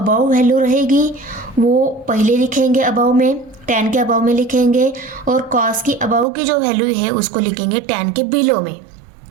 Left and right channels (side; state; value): left; drops out; at 6.2 s